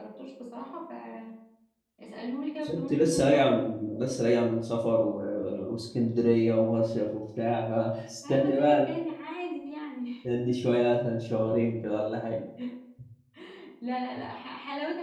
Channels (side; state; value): both; identical; correlation 1.00